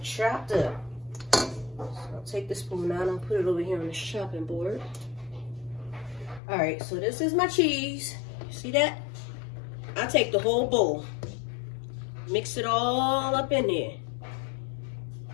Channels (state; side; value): drops out; right; at 6.4 s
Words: chopped up. So I'll take the spoon out and put it over here on the chopping board. All right, so this is my cheese. You see that? I take the whole bowl. Mix it all up in there.